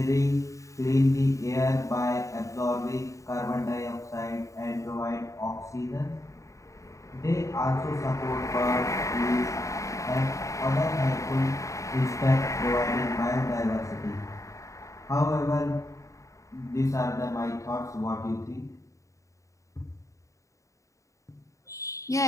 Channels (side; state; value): right; late; 0.15 ms